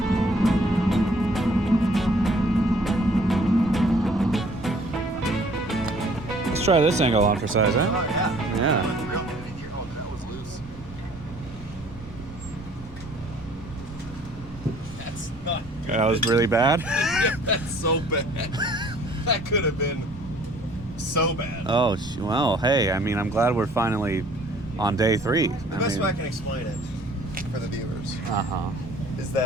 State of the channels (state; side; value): noise; right; rumble, 17 dB below the sound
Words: Let's try this angle on for size, huh? Oh yeah. Yeah. That was loose. That's not good. That was really bad. That's so bad. That could have been so bad. Oh, well, hey, I mean, I'm glad we're finally on day 3. The best way I can explain it for the viewers Uh-huh. is